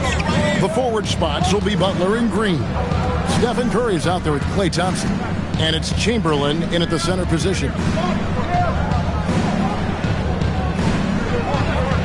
The forward spots will be Butler and Green. Stephen Curry is out there with Klay Thompson. And it's Chamberlain in at the center position.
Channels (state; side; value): identical; both; correlation 1.00